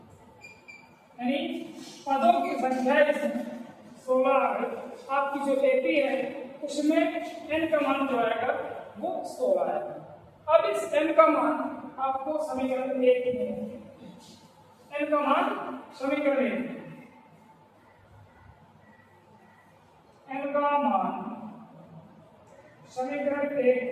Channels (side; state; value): both; identical; correlation 1.00